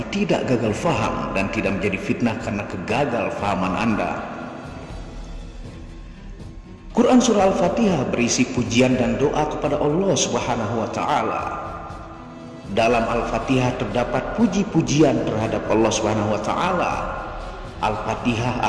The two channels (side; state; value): both; identical; correlation 1.00